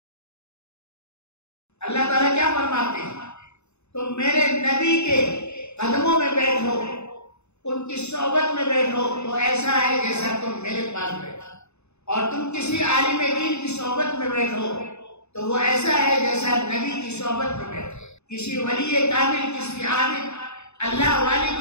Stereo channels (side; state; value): right; late; 0.81 ms